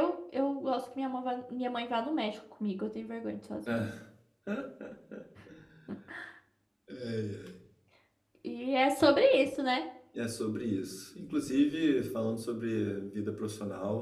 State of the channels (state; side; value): identical; both; correlation 1.00